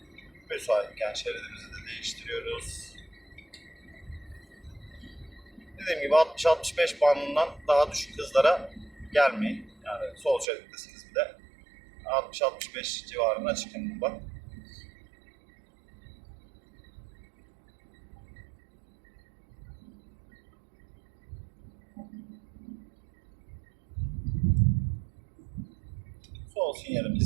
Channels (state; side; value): drops out; left; at 10.5 s